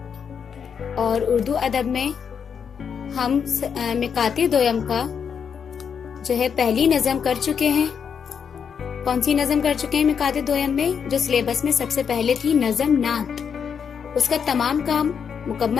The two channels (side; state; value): right; quieter; 7.0 dB